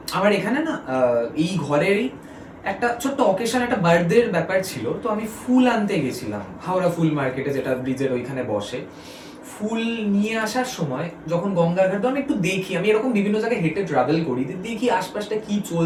আমার এখানে না এই ঘরেরই একটা ছোট্ট অকেশন, একটা বার্থডের ব্যাপার ছিল, তো আমি ফুল আনতে গেছিলাম হাওড়া ফুল মার্কেটে, যেটা ব্রিজের ওইখানে বসে। ফুল নিয়ে আসার সময় যখন গঙ্গার ঘাট, আমি একটু দেখি, আমি এরকম বিভিন্ন জায়গায় হেঁটে ট্রাভেল করি, দেখি আশপাশটা কি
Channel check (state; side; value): identical; both; correlation 1.00